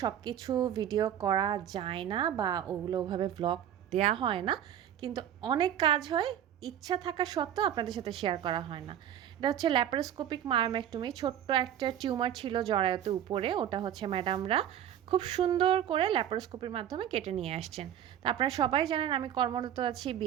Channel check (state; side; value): quieter; left; 10.5 dB